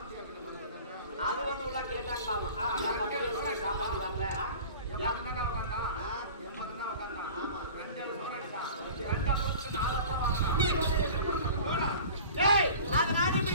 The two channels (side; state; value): both; inverted; correlation -0.40